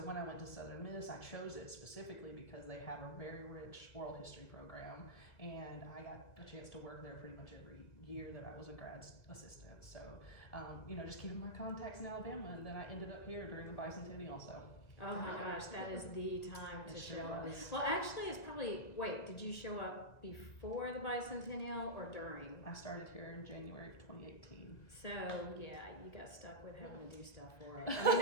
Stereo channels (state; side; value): late; right; 1.9 ms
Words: I went to Southern Miss, I chose it specifically because they have a very rich oral history program, and I got a chance to work there pretty much every year that I was a grad assistant. So, just keeping my contacts in Alabama, and then I ended up here during the bicentennial. So. Oh my gosh, that is the time to It show sure up. was. Well, actually, it's probably, did you show up before the bicentennial or during? I started here in January of 2018. So, yeah, you got stuck with having to do stuff for it.